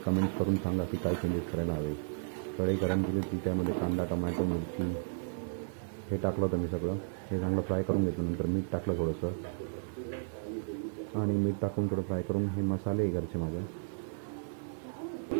कमेंट्स करून सांगा की काय चेंजेस करायला हवे. कढई गरम केली होती, त्यामध्ये कांदा, टमॅटो, मिरची हे टाकलं होतं मी. सगळं हे चांगलं फ्राय करून घेतलं. नंतर मीठ टाकलं थोडंसं आणि मीठ टाकून थोडं फ्राय करून हे मसाले आहे घरचे माझ्या,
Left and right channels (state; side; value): silent; left; 55 dB below the other